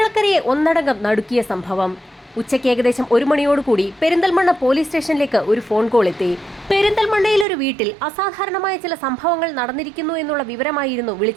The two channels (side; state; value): left; drops out; at 7.5 s